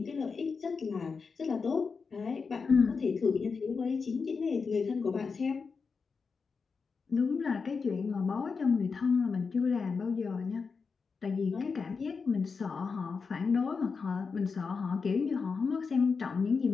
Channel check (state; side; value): quieter; right; 5.1 dB